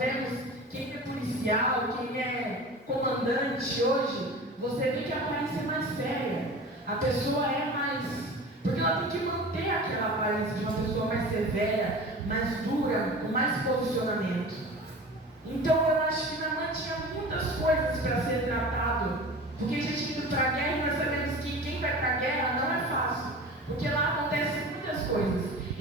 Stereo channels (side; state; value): both; normal; correlation 0.36